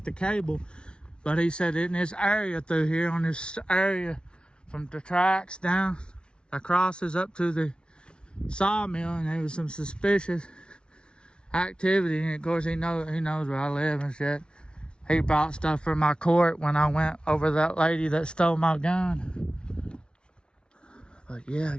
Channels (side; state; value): right; late; 0.056 ms